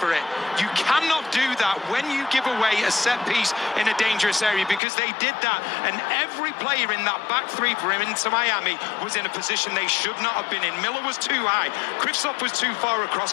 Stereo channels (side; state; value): right; drops out; at 4.8 s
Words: it. You cannot do that when you give away a set piece in a dangerous area, because they did that. And every player in that back three for him into Miami was in a position they should not have been in. Miller was too high. Kristoff was too far across.